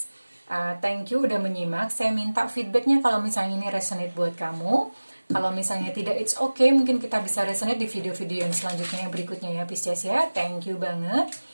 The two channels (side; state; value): both; inverted; correlation -1.00